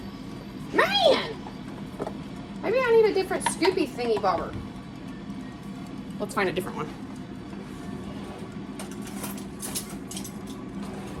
Man! Maybe I need a different scoopy thingy bobber. Let's find a different one.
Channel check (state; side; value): identical; both; correlation 1.00